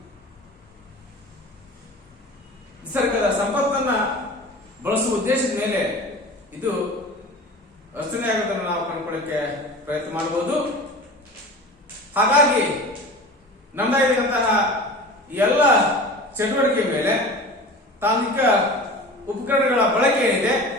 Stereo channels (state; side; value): normal; both; correlation 0.36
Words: ನಿಸರ್ಗದ ಸಂಪತ್ತನ್ನ ಬಳಸುವ ಉದ್ದೇಶದ ಮೇಲೆ ಇದು ರಚನೆಯಾಗುವುದನ್ನು ನಾವು ಕಂಡುಕೊಳ್ಳಕ್ಕೆ ಪ್ರಯತ್ನ ಮಾಡಬಹುದು. ಹಾಗಾಗಿ ನಮ್ಮದಾಗಿರುವಂತಹ ಎಲ್ಲ ಚಟುವಟಿಕೆ ಮೇಲೆ ತಾಂತ್ರಿಕ ಉಪಕರಣಗಳ ಬಳಕೆ ಏನಿದೆ